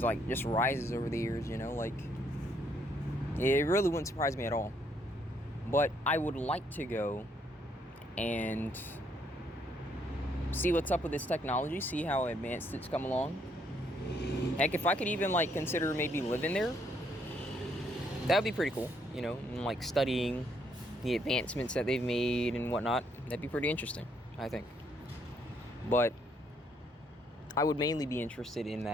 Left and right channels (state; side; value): normal; both; correlation 0.71